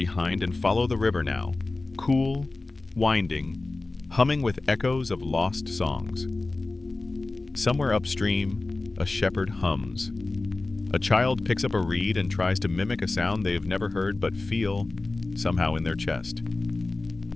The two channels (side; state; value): right; quieter; 3.3 dB